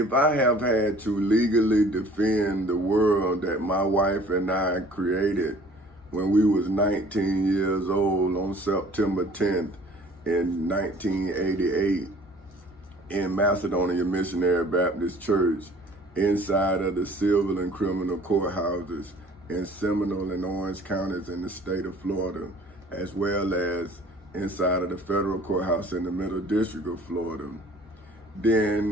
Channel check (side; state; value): both; normal; correlation 0.51